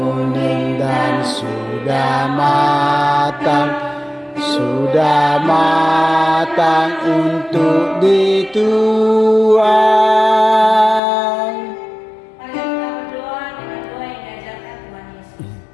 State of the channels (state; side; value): drops out; right; at 11.0 s